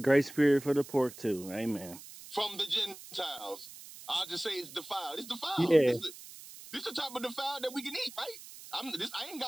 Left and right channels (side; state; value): right; noise; hiss, 16 dB below the sound